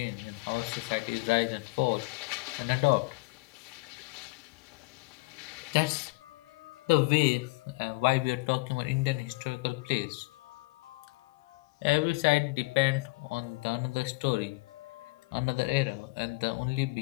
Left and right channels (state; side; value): quieter; right; 26.1 dB